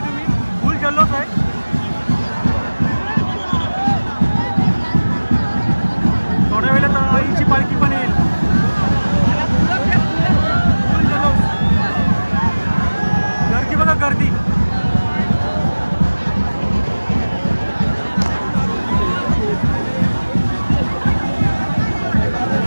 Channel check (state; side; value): inverted; both; correlation -1.00